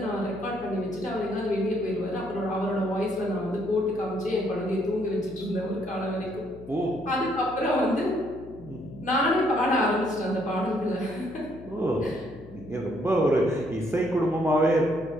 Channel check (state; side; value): noise; left; hum, 16 dB below the sound